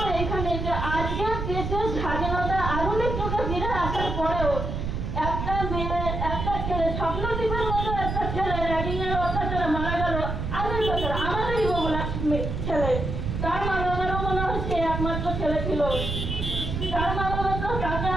এখানে যে আজকের দেশের স্বাধীনতা আধুনিক যুগে ফিরে আসার পরেও একটা মেয়ে, একটা ছেলে, স্বপ্নদ্বীপের মতো একটা ছেলে র্যাগিং এর অত্যাচারে মারা গেল আগের বছর, আমাদেরই বগুড়া ছেলে। তার মা বাবারও মনে হয় সে একমাত্র ছেলে ছিল। তার মা বাবা তো তাকে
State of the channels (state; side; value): noise; right; rumble, 3 dB below the sound